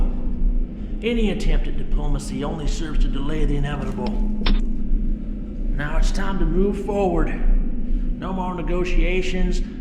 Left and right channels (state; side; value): identical; both; correlation 1.00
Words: Any attempt at diplomacy only serves to delay the inevitable. Now it's time to move forward. No more negotiations,